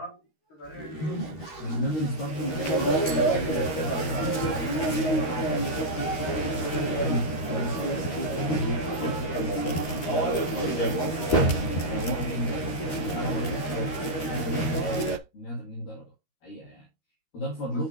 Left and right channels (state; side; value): late; right; 13 ms